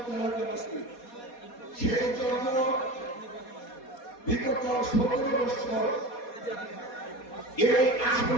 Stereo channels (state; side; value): late; right; 4.2 ms